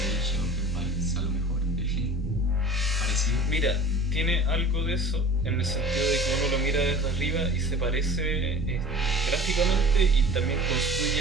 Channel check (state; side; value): normal; both; correlation 0.41